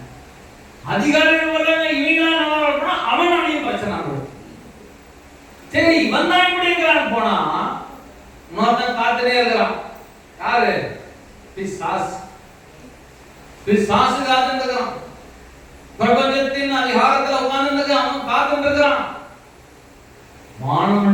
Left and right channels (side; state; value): both; identical; correlation 1.00